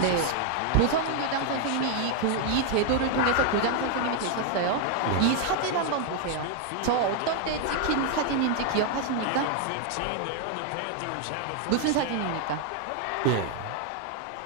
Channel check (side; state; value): both; different; correlation 0.00